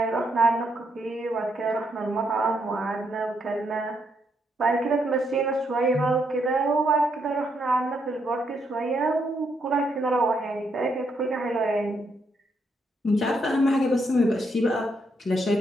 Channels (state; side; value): normal; both; correlation 0.77